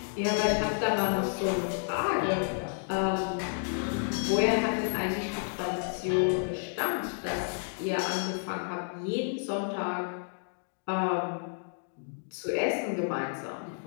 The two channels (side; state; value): right; silent; digital silence